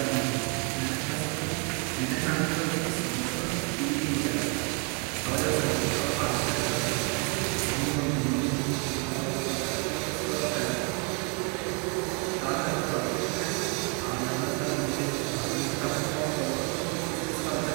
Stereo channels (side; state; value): left; quieter; 34.7 dB